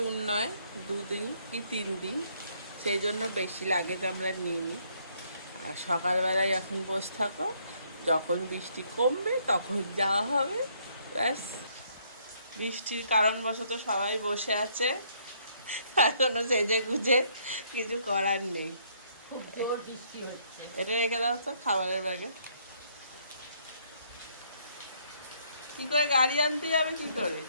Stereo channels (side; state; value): both; inverted; correlation -0.67